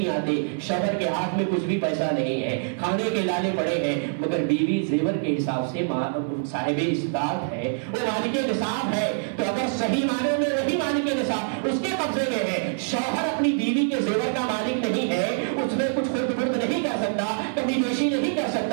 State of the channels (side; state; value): left; silent; 62 dB below the other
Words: آتے، شوہر کے ہاتھ میں کچھ بھی پیسہ نہیں ہے، کھانے کے لالے پڑے ہیں، مگر بیوی زیور کے حساب سے صاحب استطاعت ہے، وہ مالک نصاب ہے، تو اگر صحیح معنوں میں وہی مالک نصاب اس کے قبضے میں ہے، شوہر اپنی بیوی کے زیور کا مالک نہیں ہے، اس میں کچھ خرد برد نہیں کر سکتا، کمی بیشی نہیں کر